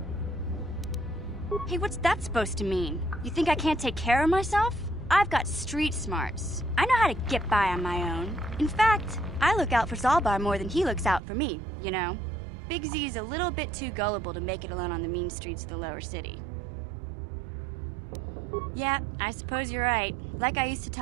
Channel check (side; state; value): left; drops out; at 11.2 s